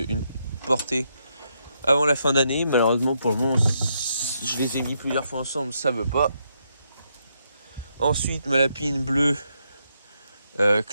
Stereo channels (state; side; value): inverted; both; correlation -0.79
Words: portée avant la fin d'année. Malheureusement, pour le moment, je les ai mis plusieurs fois ensemble, ça veut pas. Ensuite, ma lapine bleue